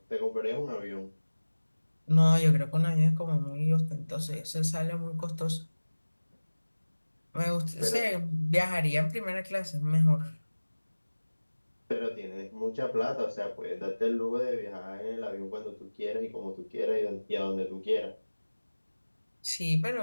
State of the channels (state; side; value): inverted; both; correlation -1.00